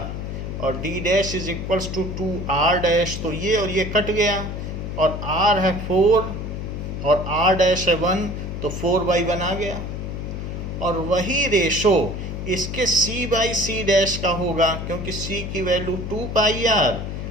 और d dash is equals to 2r dash. तो ये और ये कट गया और r है 4 और r डैश है 1, तो 4/1 आ गया। और वही रेशो इसके c बाई c डैश का होगा, क्योंकि c की वैल्यू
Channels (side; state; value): left; noise; hum, 6 dB below the sound